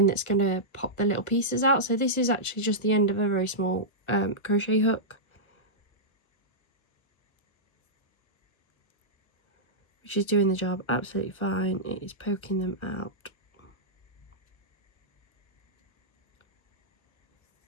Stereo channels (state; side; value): late; right; 1.3 ms